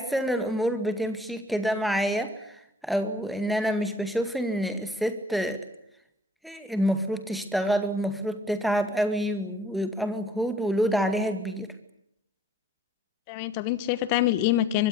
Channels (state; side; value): normal; both; correlation 0.58